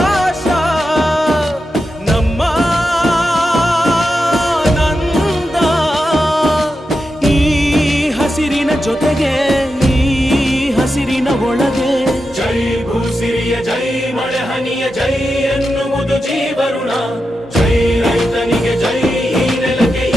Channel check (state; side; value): normal; both; correlation 0.89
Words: ನಮ್ಮ ನಂದ ಈ ಹಸಿರಿನ ಜೊತೆಗೆ ಈ ಹಸಿರಿನ ಒಳಗೆ ಜೈ ಭೂಸಿರಿಯ ಜೈ ಮಳೆ ಹನಿಯ ಜೈ ಎನ್ನುವುದು ಜೀವರುಣ ಜೈ ರೈತನಿಗೆ ಜೈ ಈ ನೆಲಕ್ಕೆ